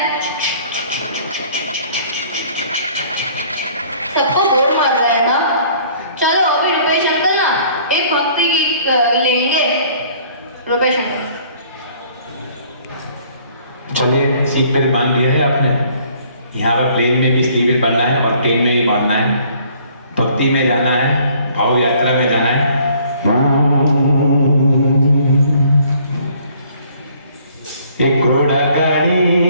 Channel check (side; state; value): both; inverted; correlation -0.58